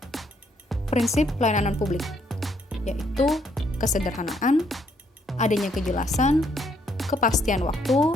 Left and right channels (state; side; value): normal; both; correlation 0.71